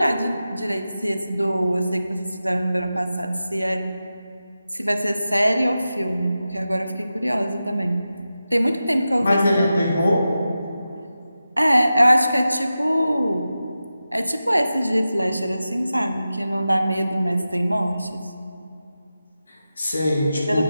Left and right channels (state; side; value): inverted; both; correlation -0.93